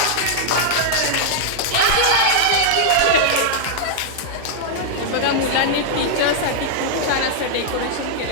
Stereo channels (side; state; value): both; different; correlation -0.01